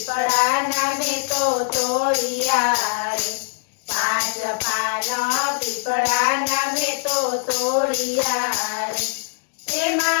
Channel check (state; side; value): silent; right; digital silence